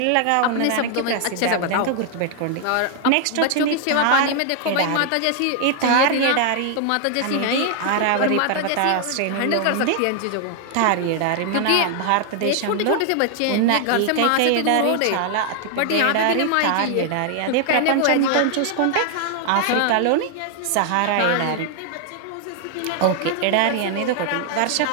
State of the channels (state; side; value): different; both; correlation 0.00